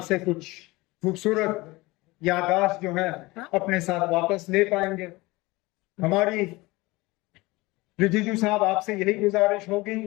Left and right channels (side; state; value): right; quieter; 21.7 dB